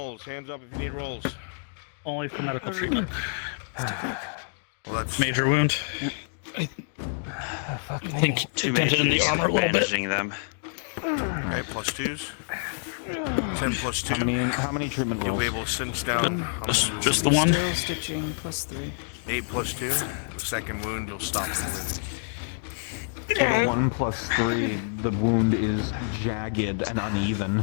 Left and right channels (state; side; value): silent; right; digital silence